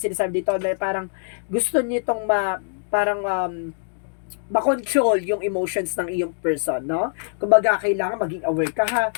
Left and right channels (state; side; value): silent; right; digital silence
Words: sinasabi dito na parang gusto nitong makontrol yung emotions ng iyong person, no? Kumbaga, kailangan maging aware ka, ha?